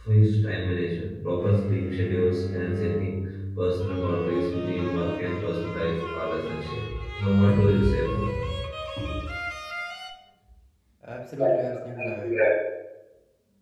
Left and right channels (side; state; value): both; identical; correlation 1.00